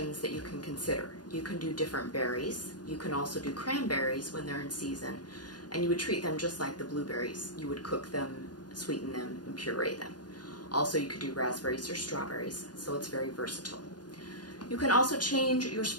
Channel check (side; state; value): right; late; 0.69 ms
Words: that you can consider. You can do different berries. You can also do cranberries when they're in season. And you would treat them just like the blueberries. You would cook them, sweeten them, and puree them. Also, you could do raspberries or strawberries, so it's very versatile. You can also change your